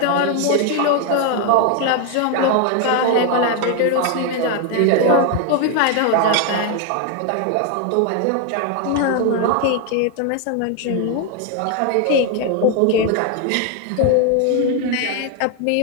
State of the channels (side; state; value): both; different; correlation 0.01